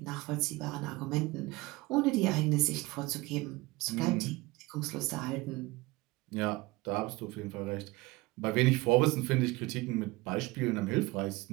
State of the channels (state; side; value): quieter; left; 21.9 dB